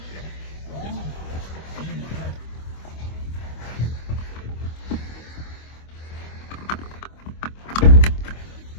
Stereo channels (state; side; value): late; right; 25 ms